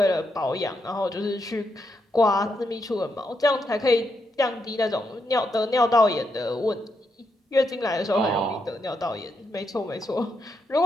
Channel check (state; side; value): normal; both; correlation 0.81